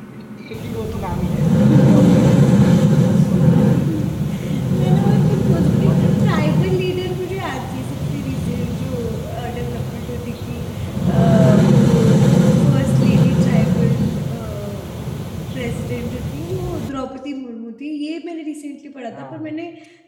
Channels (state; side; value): identical; both; correlation 1.00